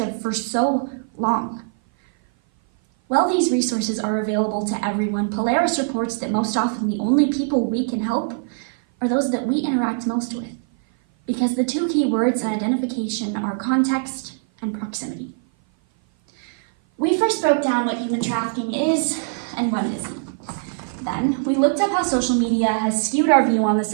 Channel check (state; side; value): silent; left; 56 dB below the other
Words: for so long. While these resources are available to everyone, Polaris reports that most often the only people we can help are those that we interact most with, because the two key words in identification are context and proximity. We first broke down what human trafficking is and what it isn't. Then, we looked up how social media has skewed our view on the